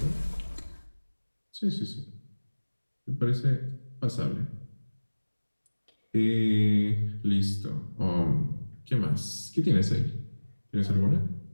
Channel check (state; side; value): inverted; both; correlation -1.00